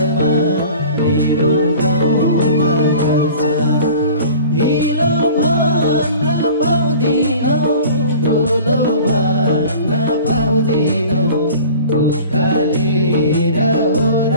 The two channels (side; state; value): both; inverted; correlation -0.42